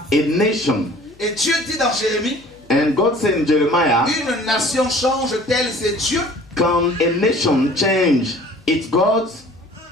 a nation. Et Dieu dit dans Jérémie, And God said in Jeremiah, une nation change-t-elle ses dieux? can a nation change its gods?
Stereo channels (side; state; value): left; noise; hum, 30 dB below the sound